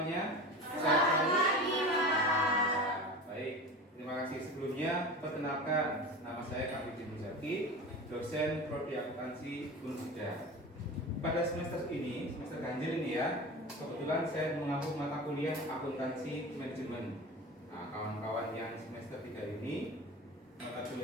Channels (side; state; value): both; normal; correlation 0.31